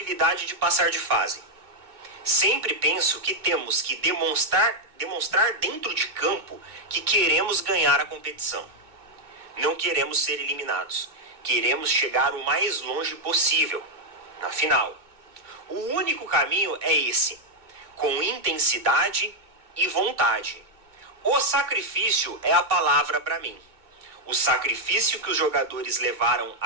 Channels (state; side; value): late; left; 2.2 ms